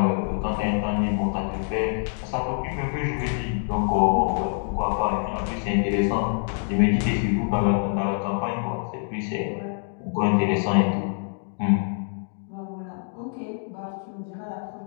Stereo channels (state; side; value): silent; right; 61 dB below the other